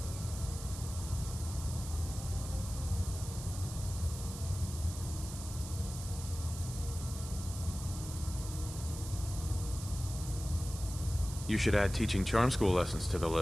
You should add teaching charm school lessons to the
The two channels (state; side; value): noise; right; hiss, 11 dB below the sound